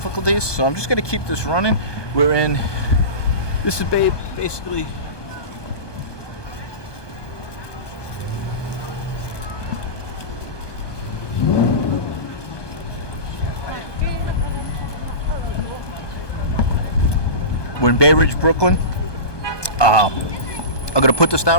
so I'm just going to keep this running. We're in, this is basically, we're in Bay Ridge, Brooklyn. I'm going to put this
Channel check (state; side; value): late; right; 1.2 ms